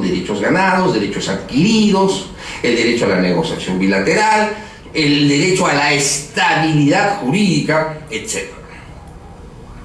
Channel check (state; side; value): identical; both; correlation 1.00